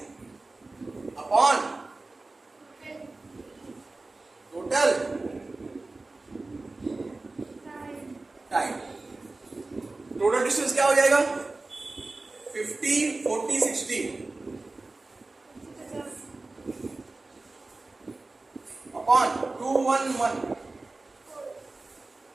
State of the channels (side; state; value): left; quieter; 3.3 dB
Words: upon total time. Total distance क्या हो जाएगा? 50, 40, 60 अपॉन 211